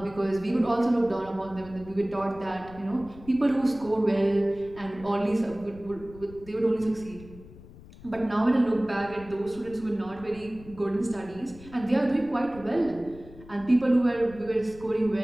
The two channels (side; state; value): left; noise; rumble, 19 dB below the sound